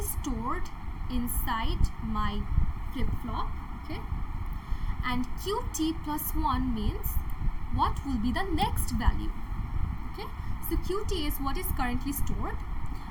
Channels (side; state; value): both; identical; correlation 1.00